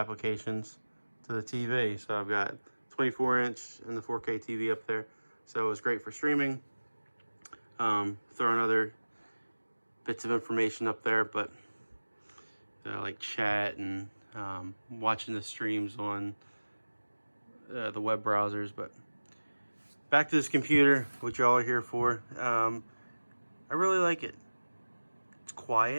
to the TV. So I've got 24-inch and the 4K TV up there. So it was great for streaming. Throwing other bits of information up there, but like chat and watching the streams on the web browsers. But back to this computer, which y'all are here for. I really like it. It's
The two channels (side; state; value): both; inverted; correlation -1.00